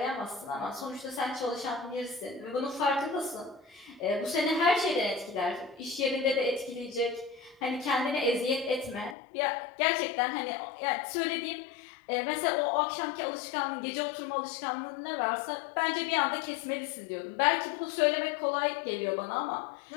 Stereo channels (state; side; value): drops out; right; at 9.2 s